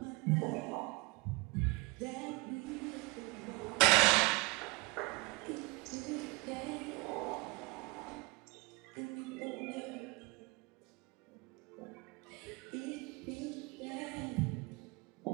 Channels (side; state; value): left; quieter; 26.9 dB